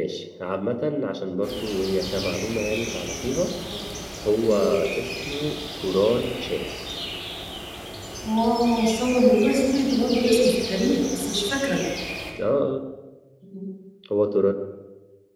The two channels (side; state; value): both; identical; correlation 1.00